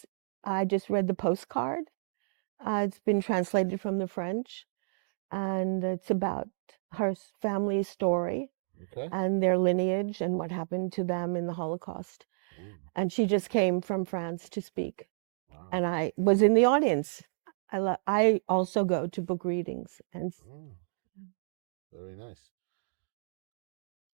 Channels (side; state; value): left; silent; digital silence